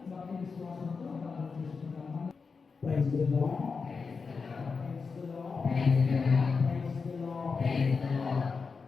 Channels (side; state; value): right; quieter; 5.0 dB